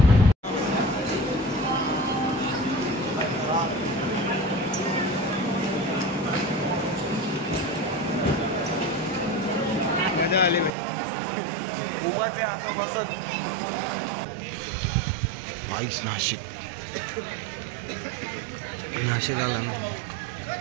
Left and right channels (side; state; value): left; drops out; at 10.7 s